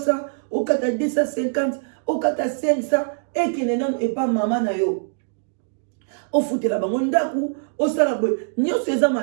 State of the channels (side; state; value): left; silent; digital silence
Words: au 4 à 250, au 4 à 500 et que nenan et pas maman na yo. O foute la bango ndaku, o sala boy. Nyo se za